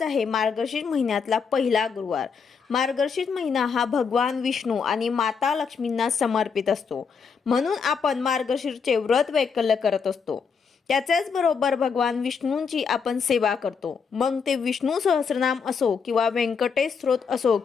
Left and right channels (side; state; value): right; quieter; 5.9 dB